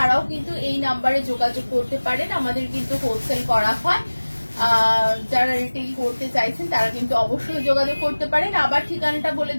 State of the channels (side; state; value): both; inverted; correlation -1.00